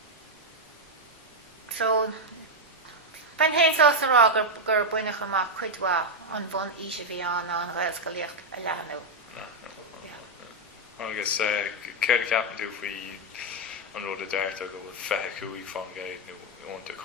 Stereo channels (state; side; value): normal; both; correlation 0.01